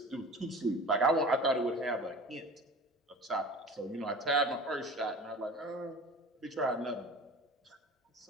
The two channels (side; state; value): both; normal; correlation 0.39